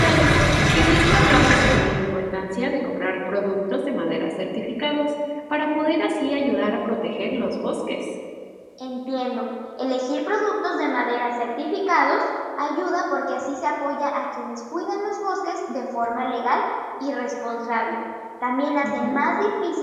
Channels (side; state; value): both; identical; correlation 1.00